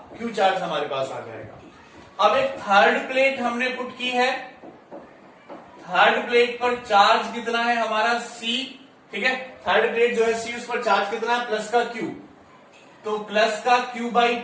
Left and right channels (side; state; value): both; identical; correlation 1.00